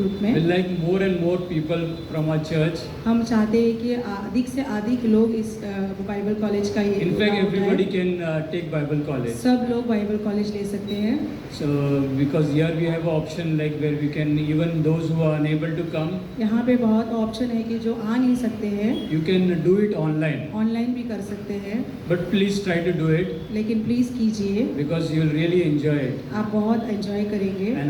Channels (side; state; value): both; identical; correlation 1.00